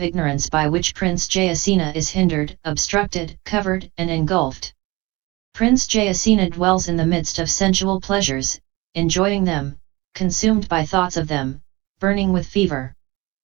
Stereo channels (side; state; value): left; quieter; 22.6 dB